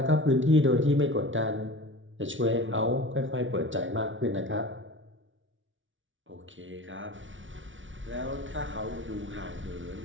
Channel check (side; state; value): left; late; 0.56 ms